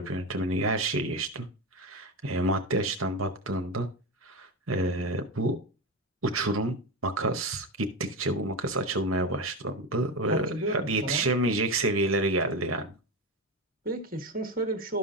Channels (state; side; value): normal; both; correlation 0.18